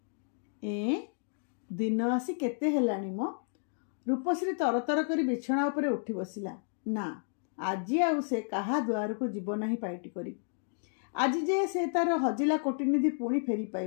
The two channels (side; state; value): right; silent; 57 dB below the other